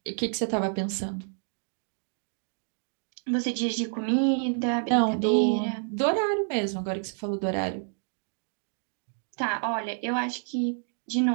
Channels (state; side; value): silent; left; 59 dB below the other